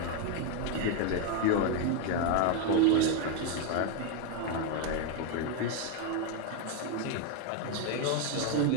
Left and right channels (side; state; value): both; different; correlation 0.01